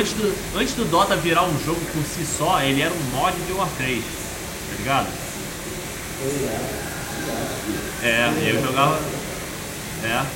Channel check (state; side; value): identical; both; correlation 1.00